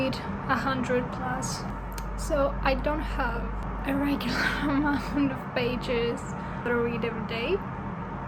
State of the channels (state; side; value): identical; both; correlation 1.00